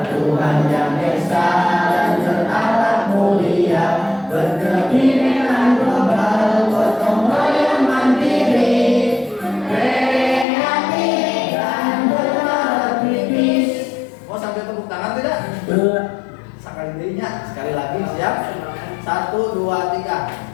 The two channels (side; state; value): right; drops out; at 10.5 s